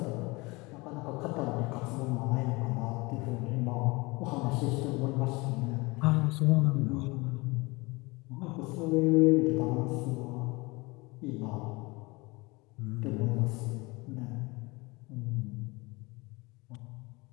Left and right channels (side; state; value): right; quieter; 24.6 dB